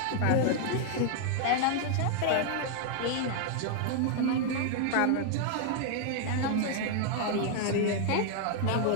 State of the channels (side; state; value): both; different; correlation 0.00